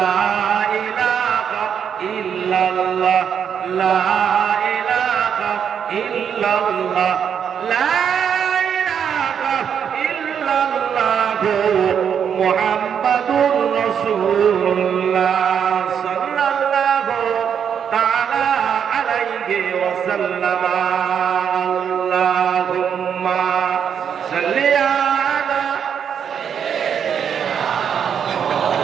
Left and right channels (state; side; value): quieter; left; 7.9 dB